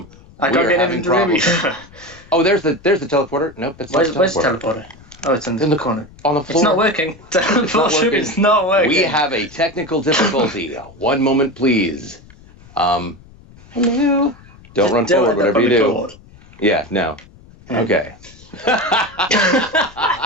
I can't get into the room either. Oh, there's the teleporter. Nope, that's not the teleporter. Where's the teleporter? Oh, it's in the corner. On the floor. It's not working. It's not working. We have a technical difficulty. One moment, please. Hello. Don't run forward, whatever you do. Cord. Yeah, no. Okay.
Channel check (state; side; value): noise; left; rumble, 23 dB below the sound